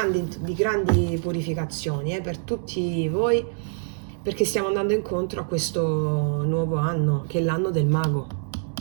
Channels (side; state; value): left; silent; 62 dB below the other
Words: purificazioni per tutti voi, perché stiamo andando incontro a questo nuovo anno, che è l'anno del mago.